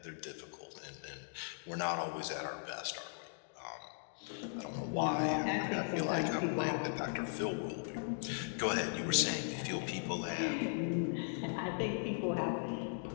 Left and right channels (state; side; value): silent; right; digital silence